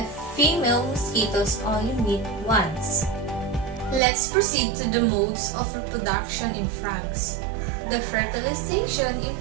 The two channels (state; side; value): drops out; left; at 4.0 s